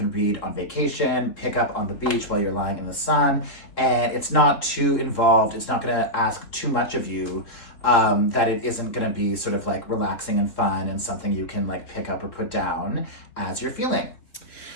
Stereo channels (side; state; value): right; late; 3.7 ms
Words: read on vacation, pick up on the beach while you're lying in the sun, and it's not too involved. It's not going to ask too much of you, that it isn't going to be sort of like relaxing and fun and something you can like pick up or put down as you're feeling.